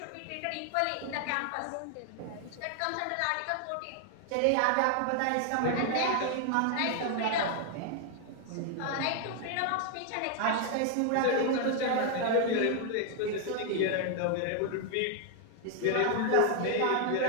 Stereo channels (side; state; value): both; different; correlation 0.00